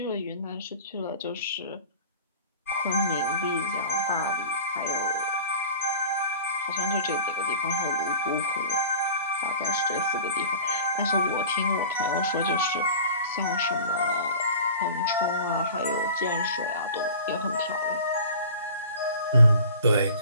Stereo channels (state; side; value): inverted; both; correlation -0.42